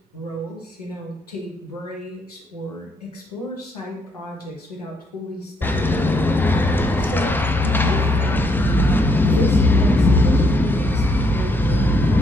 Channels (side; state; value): both; normal; correlation 0.73